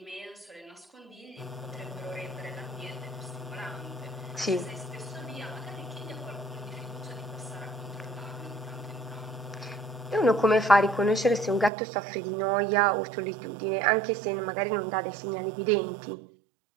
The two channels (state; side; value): drops out; left; at 11.7 s